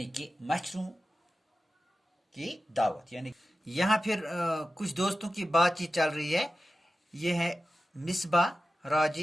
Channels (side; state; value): both; normal; correlation 0.93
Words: कि मच्छरों की दावत। यानी यहाँ फिर कुछ दोस्तों की बातचीत चल रही है। ये है मिसबा,